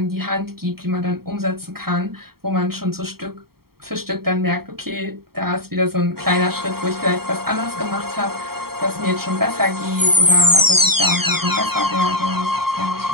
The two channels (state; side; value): late; left; 0.94 ms